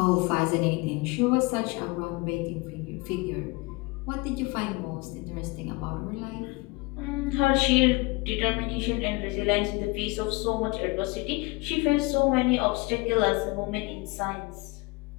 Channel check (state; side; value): quieter; right; 25.3 dB